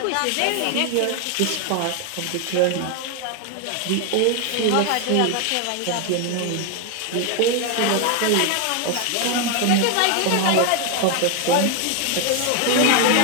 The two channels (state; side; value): different; both; correlation 0.01